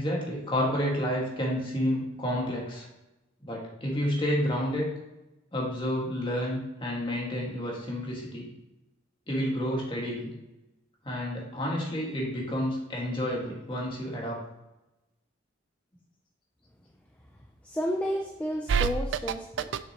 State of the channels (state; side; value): normal; both; correlation 0.60